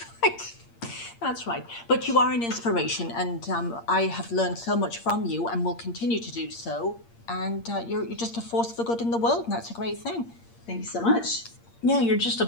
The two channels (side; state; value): right; late; 8.6 ms